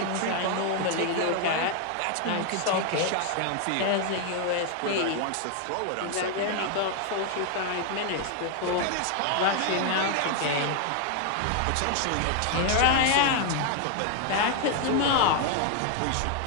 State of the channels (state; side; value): different; both; correlation 0.00